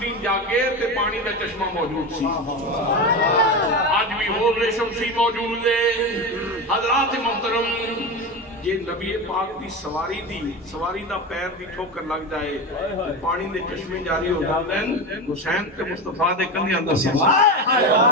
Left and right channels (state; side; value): normal; both; correlation 0.20